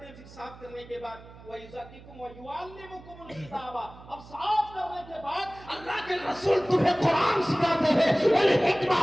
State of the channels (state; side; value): noise; right; hum, 19 dB below the sound